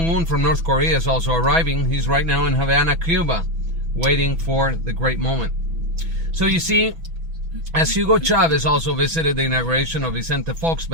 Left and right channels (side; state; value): left; late; 6.1 ms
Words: from North Korea is also arriving. He's right now in Havana, Cuba, waiting for the great moment. So you see, as Hugo Chavez also visited the inauguration of Vicente Fox